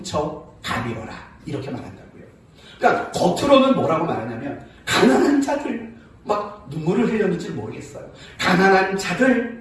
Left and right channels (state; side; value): identical; both; correlation 1.00